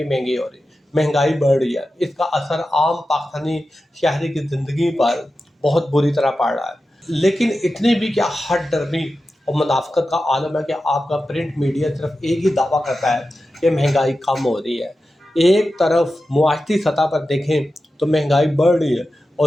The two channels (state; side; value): normal; both; correlation 0.92